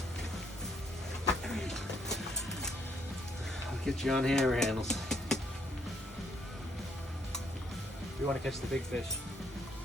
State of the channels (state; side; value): normal; both; correlation 0.70